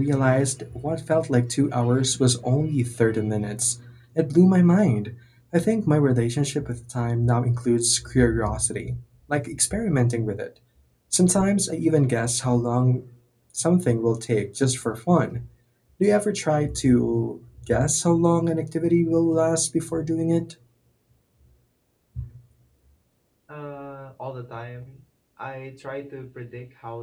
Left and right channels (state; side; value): identical; both; correlation 1.00